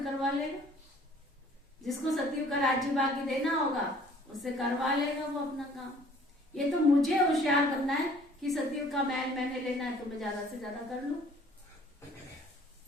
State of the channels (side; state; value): both; normal; correlation 0.55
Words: करवा लेगा। जिसको सतयुग का राज्य बाकी देना होगा उससे करवा लेगा वो अपना काम। ये तो मुझे होशियार करना है कि सतयुग का महल मैंने लेना है तो मैं ज्यादा से ज्यादा कर लूं,